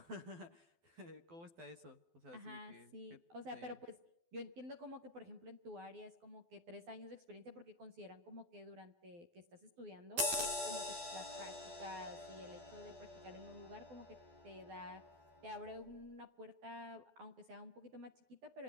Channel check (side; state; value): left; late; 12 ms